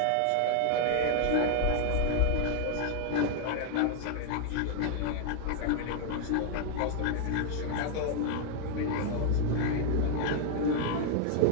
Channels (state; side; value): different; both; correlation 0.00